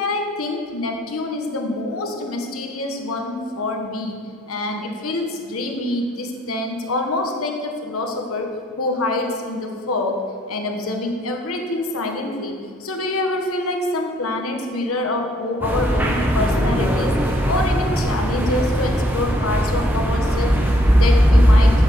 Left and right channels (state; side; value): normal; both; correlation 0.66